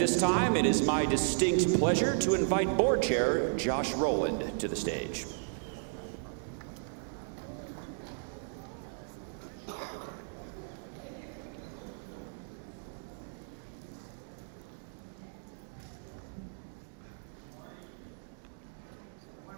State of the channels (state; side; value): silent; left; digital silence